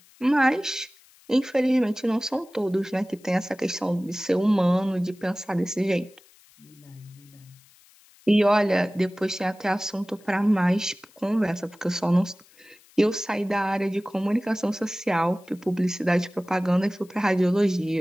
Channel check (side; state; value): left; noise; hiss, 28 dB below the sound